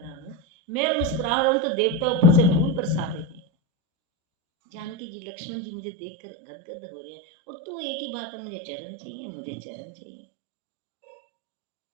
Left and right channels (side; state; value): left; drops out; at 5.0 s